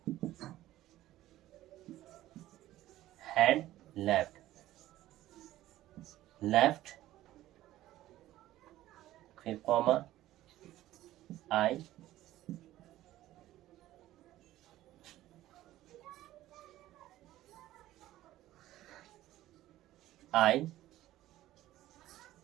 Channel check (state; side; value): quieter; left; 14.8 dB